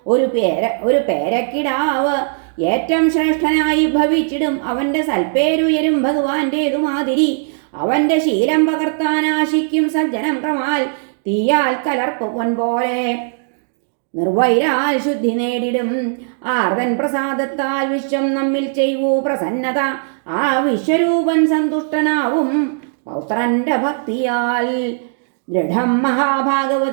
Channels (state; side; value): silent; left; digital silence